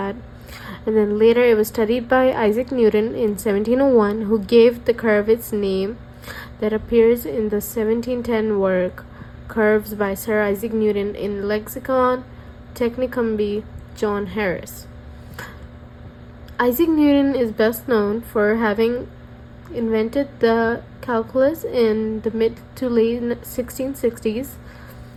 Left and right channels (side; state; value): both; identical; correlation 1.00